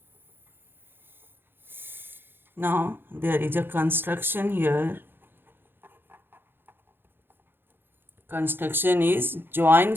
Now there is a construction here. Construction is join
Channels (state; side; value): late; left; 0.10 ms